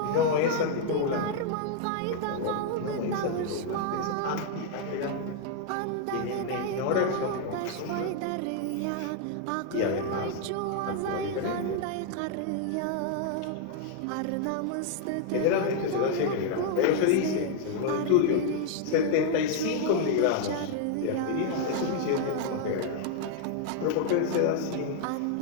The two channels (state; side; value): different; both; correlation 0.00